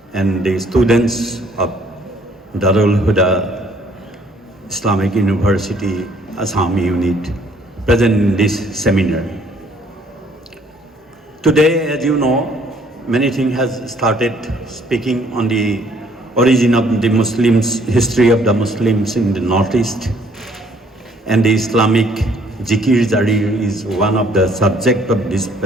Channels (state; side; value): normal; both; correlation 0.62